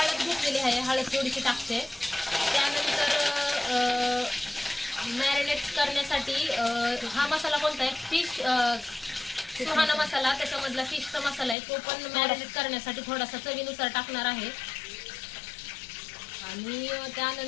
घेतलेली आहे, हळद थोडीशी टाकते. त्यानंतर मॅरिनेट करण्यासाठी हा मसाला कोणता आहे, फिश सुहाना मसाला, त्याच्यामधला फिशचा मसाला आहे, तो पण मॅरिनेट करण्यासाठी थोडासा चवीनुसार टाकणार आहे. आणि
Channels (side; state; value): right; drops out; at 11.6 s